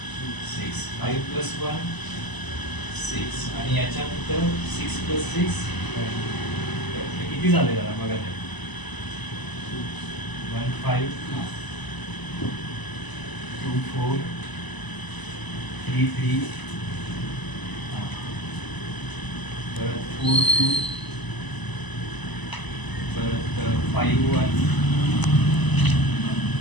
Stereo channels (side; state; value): right; late; 1.0 ms